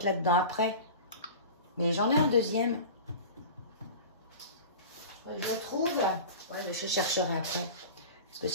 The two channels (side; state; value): both; inverted; correlation -0.34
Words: là-dedans après. Mais j'en ai un deuxième. Je le trouve. Ouais, mais je chercherai après. Parce que